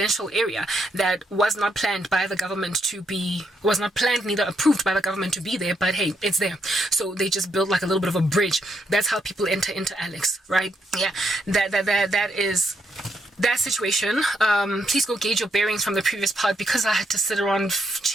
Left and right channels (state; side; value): normal; both; correlation 0.78